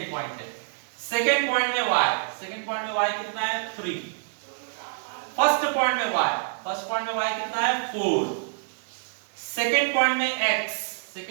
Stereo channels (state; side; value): silent; left; digital silence